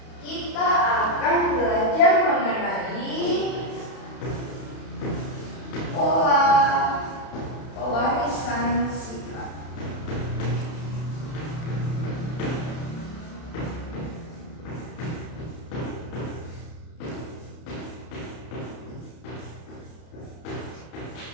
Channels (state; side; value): late; right; 31 ms